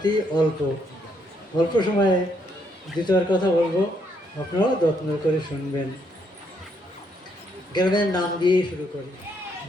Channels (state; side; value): normal; both; correlation 0.73